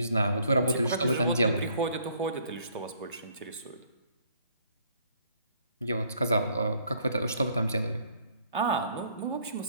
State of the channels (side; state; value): both; inverted; correlation -0.63